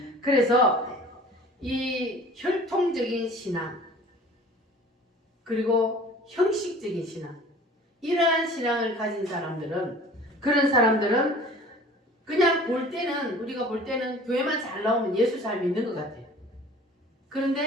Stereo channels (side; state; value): both; normal; correlation 0.46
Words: 그래서 이 혈통적인 신앙 그리고 형식적인 신앙 이러한 신앙을 가진 사람들은 그런 사람들은 그냥 볼 때는 우리가 볼 때는 교회만 잘 나오면 예수 잘 믿는 것 같아요.